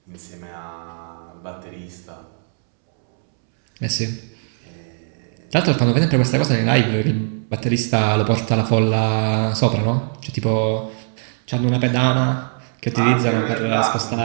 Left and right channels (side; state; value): left; silent; 65 dB below the other